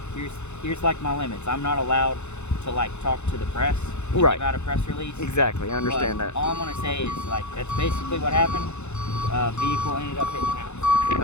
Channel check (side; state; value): right; late; 0.82 ms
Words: here's like my limits. I'm not allowed to like talk to the press. Right. About a press release. Exactly, I understand But that. all I'm gonna say is like that's basically what happened. Vehicle ended up hitting the